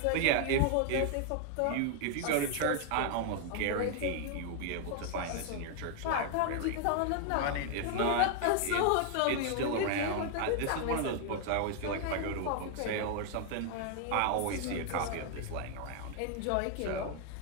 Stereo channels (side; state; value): both; different; correlation 0.00